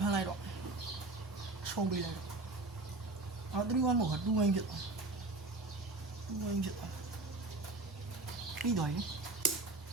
ဖမ်းလိုက်တော့ရှုံးပေးလိုက်တော့အော်31မဟုတ်2ဝင်းဖြစ်သွား2ဝင်းဖြစ်သွားပြီးတော့ရင်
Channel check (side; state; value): left; quieter; 3.1 dB